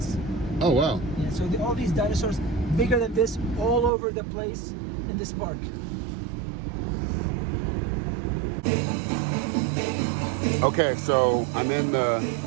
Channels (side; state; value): left; drops out; at 3.9 s